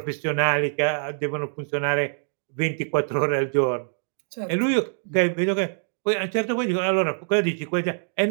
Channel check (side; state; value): left; silent; digital silence